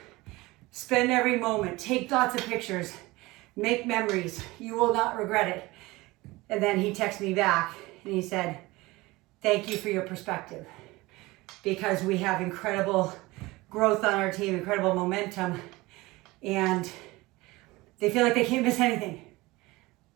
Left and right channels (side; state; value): left; quieter; 21.0 dB